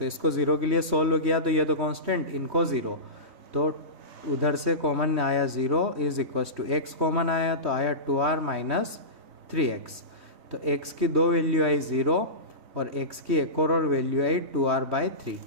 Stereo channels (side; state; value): left; late; 3.1 ms